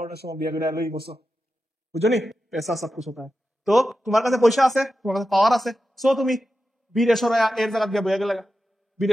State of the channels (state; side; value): normal; both; correlation 0.91